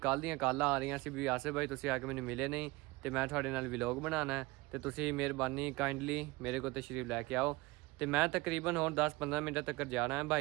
दियाँ कॉलां आ रही सी भी आसिफ भाई तुसी आके मैनू मिले नहीं तो मैं थोड़े नाल व्लॉग बनाना है तो तुसी मेहरबानी काइंडली मेरे को तशरीफ लैके आओ। तो मैं तकरीबन होर 10-15 मिनट तक जाना है।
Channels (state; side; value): quieter; left; 21.8 dB